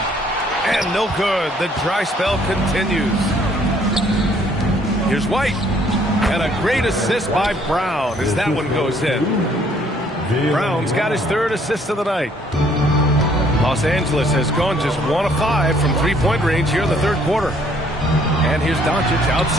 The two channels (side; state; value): both; normal; correlation 0.63